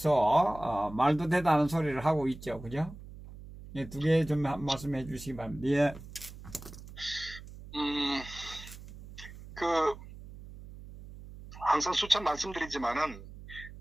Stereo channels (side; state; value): right; noise; hum, 15 dB below the sound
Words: 말도 되다는 소리를 하고 있죠, 그죠? 예, 두 개 좀 말씀해 주시기 바랍니다. 예, 음, 그, 항상 수차 말씀드리지만은,